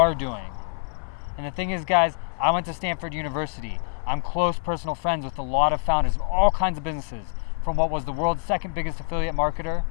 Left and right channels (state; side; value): silent; right; digital silence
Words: doing. And the thing is, guys, I went to Stanford University. I'm close personal friends with a lot of founders of all kinds of businesses, from what was the world's second biggest affiliate marketer